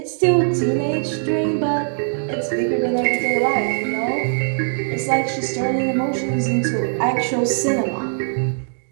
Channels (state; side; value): silent; left; digital silence